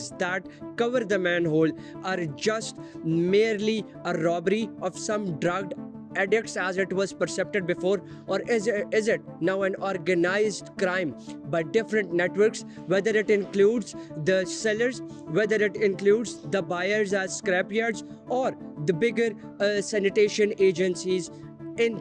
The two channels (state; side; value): identical; both; correlation 1.00